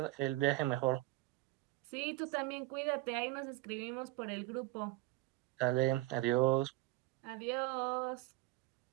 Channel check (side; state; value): left; quieter; 18.5 dB